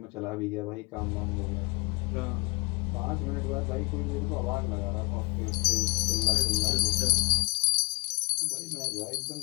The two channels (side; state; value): right; quieter; 26.9 dB